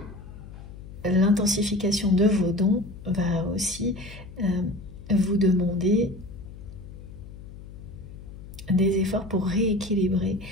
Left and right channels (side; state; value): left; noise; hum, 15 dB below the sound